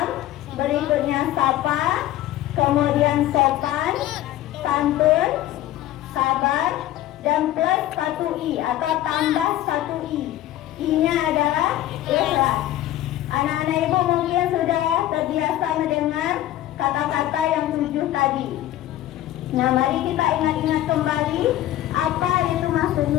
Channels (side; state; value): right; quieter; 13.9 dB